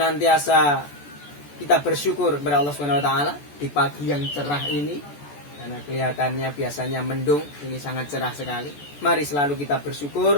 kita bersyukur kepada Allah Subhanahu wa taala di pagi yang cerah ini, karena kelihatannya biasanya mendung, ini sangat cerah sekali. Mari selalu kita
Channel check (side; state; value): right; late; 14 ms